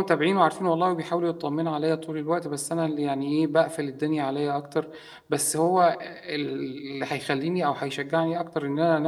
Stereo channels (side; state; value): both; identical; correlation 1.00